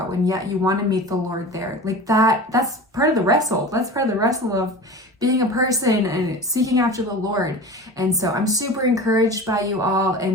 and yet you want to meet the Lord there. Like that's part of the wrestle. That's part of the wrestle of being a person and seeking after the Lord. And so I'm super encouraged by you all,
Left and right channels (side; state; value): both; normal; correlation 0.34